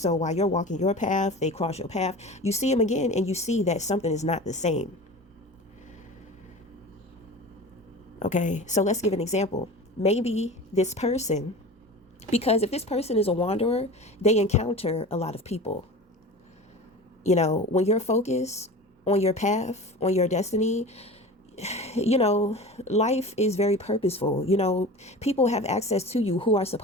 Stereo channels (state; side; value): normal; both; correlation 0.35